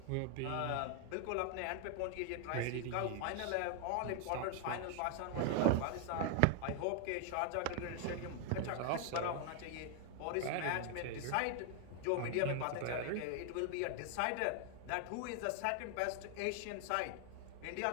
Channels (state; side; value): different; both; correlation 0.00